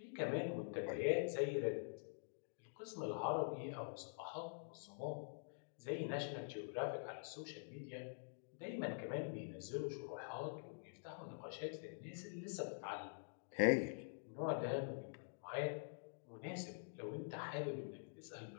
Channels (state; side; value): silent; right; digital silence